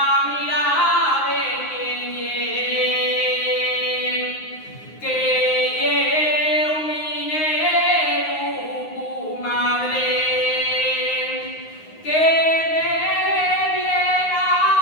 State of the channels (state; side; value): late; right; 9.6 ms